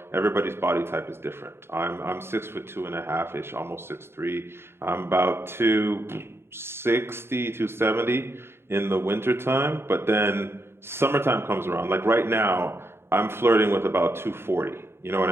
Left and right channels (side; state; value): left; late; 0.12 ms